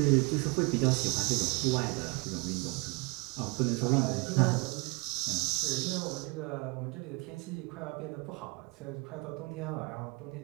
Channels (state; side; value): quieter; left; 29.0 dB